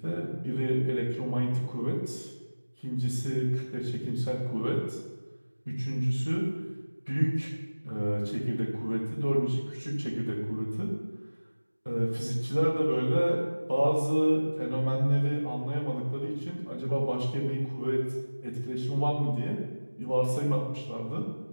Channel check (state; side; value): inverted; both; correlation -1.00